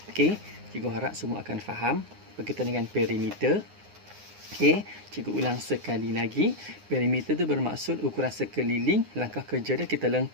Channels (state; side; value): late; left; 9.7 ms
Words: Okey, cikgu harap semua akan faham berkaitan dengan perimeter. Okey, cikgu ulang sekali lagi. Perimeter tu bermaksud ukuran sekeliling. Langkah kerja dia, kita